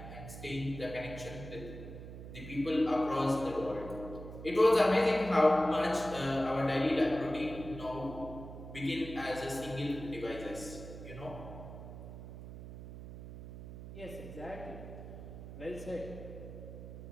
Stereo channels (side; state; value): right; noise; hum, 12 dB below the sound